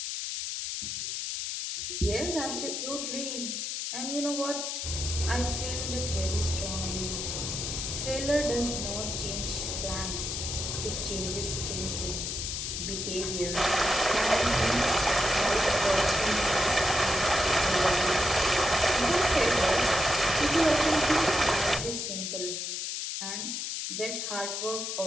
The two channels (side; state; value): left; noise; hiss, 3 dB below the sound